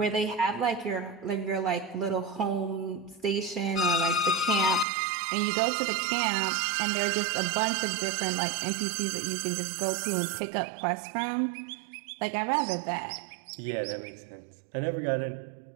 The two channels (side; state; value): left; drops out; at 4.9 s